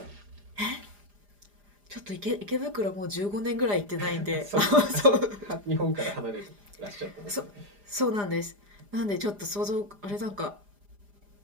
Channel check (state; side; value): late; left; 4.9 ms